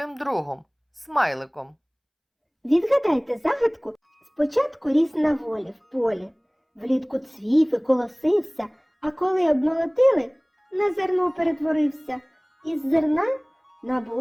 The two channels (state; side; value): identical; both; correlation 1.00